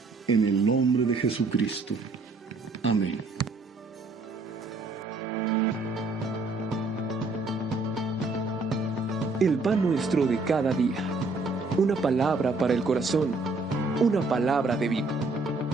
en el nombre de Jesucristo. Amén. El pan nuestro de cada día. Una palabra para el corazón. Una palabra de vida.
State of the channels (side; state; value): left; quieter; 3.5 dB